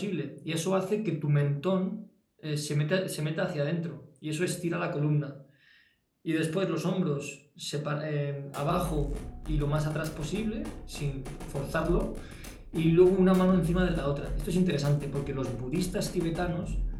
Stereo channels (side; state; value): both; identical; correlation 1.00